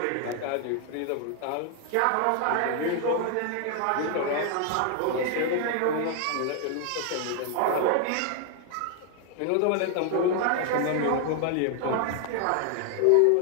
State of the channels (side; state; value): both; different; correlation 0.00